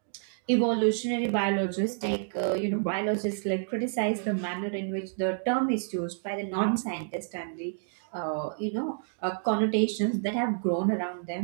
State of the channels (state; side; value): silent; left; digital silence